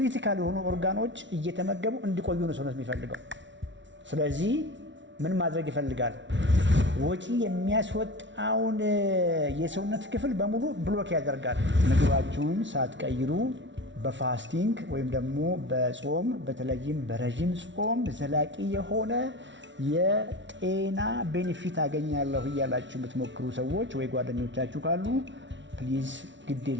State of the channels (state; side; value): late; left; 0.54 ms